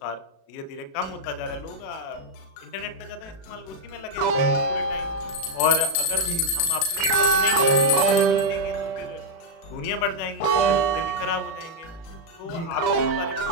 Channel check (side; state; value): right; late; 36 ms